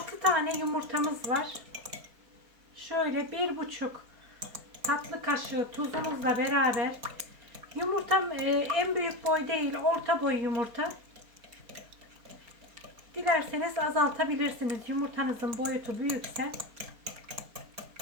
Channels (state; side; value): late; left; 4.3 ms